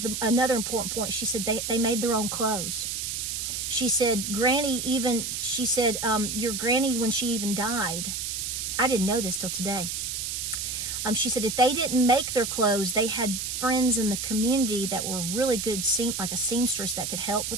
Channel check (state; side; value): noise; right; hiss, 3 dB below the sound